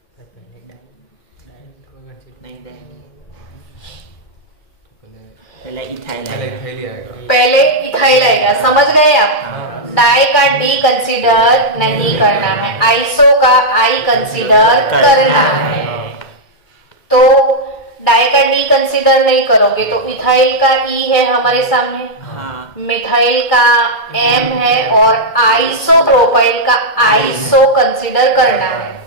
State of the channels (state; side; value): late; right; 2.4 ms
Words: नहीं, पहले इथाइल आएगा। पहले इथाइल आएगा, समझ गए आप? डाई का डी कंसीडर नहीं करना है, आइसो का आई कंसीडर करना है। तो डाई का डी कंसीडर नहीं करोगे तो इथाइल का ई है हमारे सामने, मिथाइल का एम है और आइसोप्रोपाइल का आइसो कंसीडर करना है।